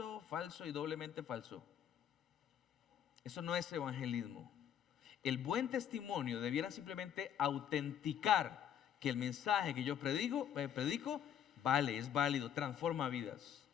falso y doblemente falso. Eso no es evangelismo. El buen testimonio debiera simplemente autenticar que el mensaje que yo predico vale, es válido, transforma vidas.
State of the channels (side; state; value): right; quieter; 9.4 dB